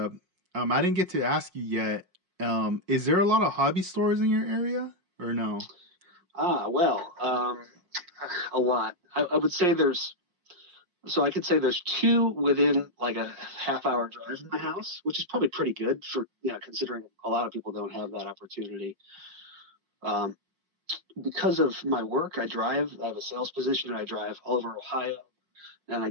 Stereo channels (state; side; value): late; left; 5.5 ms